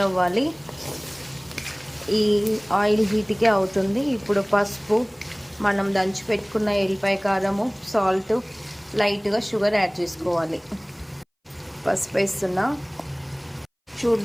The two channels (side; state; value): both; identical; correlation 1.00